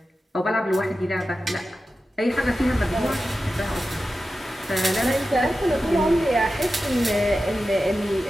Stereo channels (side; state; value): both; normal; correlation 0.93